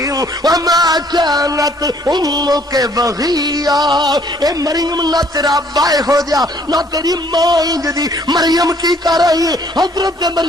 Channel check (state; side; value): normal; both; correlation 0.62